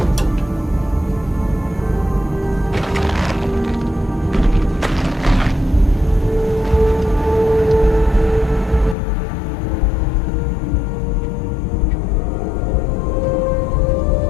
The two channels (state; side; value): drops out; right; at 9.0 s